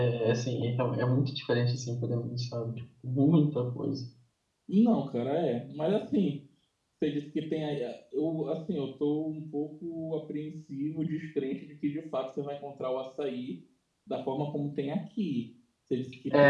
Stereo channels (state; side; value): identical; both; correlation 1.00